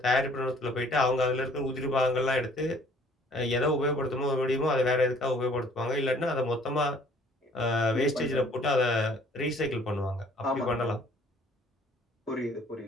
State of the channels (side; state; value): both; normal; correlation 0.57